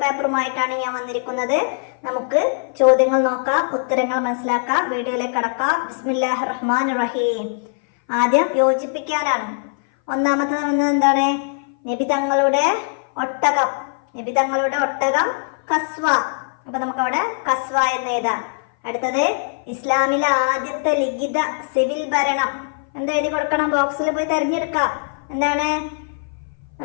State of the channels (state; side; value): silent; right; 59 dB below the other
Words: പേപ്പറുമായിട്ടാണ് ഞാൻ വന്നിരിക്കുന്നത്. നമുക്ക് ചോദ്യങ്ങൾ നോക്കാം, ഉത്തരങ്ങൾ മനസ്സിലാക്കാം, വീഡിയോയിലേക്ക് കടക്കാം. ബിസ്മില്ലാഹിർ റഹ്മാനിർ റഹീം. ആദ്യം യോജിപ്പിക്കാനാണ്. ഒന്നാമത്തെ എന്താണ്? നബി തങ്ങളുടെ ഒട്ടകം കസ്വ. അപ്പൊ നമുക്ക് അവിടെ കസ്വ എന്ന് എഴുതാം. അടുത്തത് ഇസ്ലാമിലെ ആദ്യത്തെ ലിഖിത സിവിൽ ഭരണം. എന്താ എഴുതി കൊടുക്കണം? ബോക്സിൽ പോയി തെരഞ്ഞെടുക്കാം. എന്താണ്?